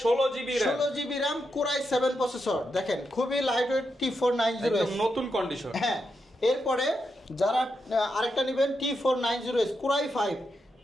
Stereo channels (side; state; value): both; normal; correlation 0.85